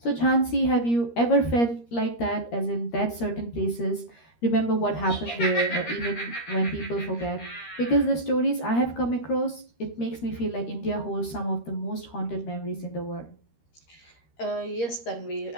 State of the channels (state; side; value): late; right; 13 ms